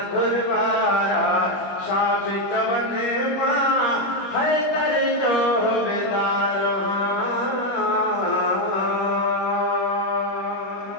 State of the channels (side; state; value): right; late; 21 ms